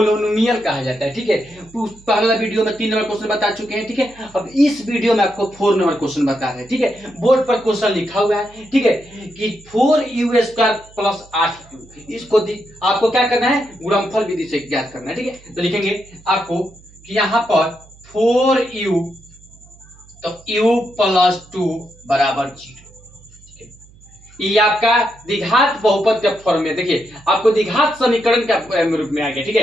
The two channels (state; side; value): noise; right; hum, 25 dB below the sound